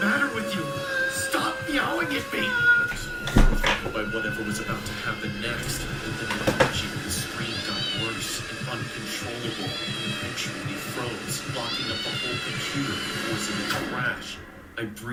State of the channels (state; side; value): identical; both; correlation 1.00